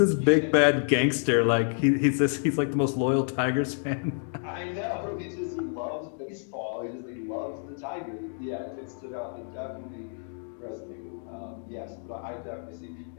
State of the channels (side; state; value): right; silent; 57 dB below the other